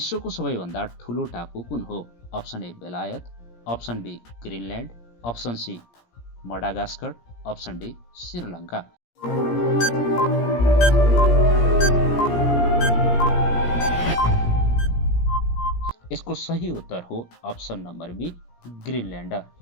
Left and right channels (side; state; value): right; late; 17 ms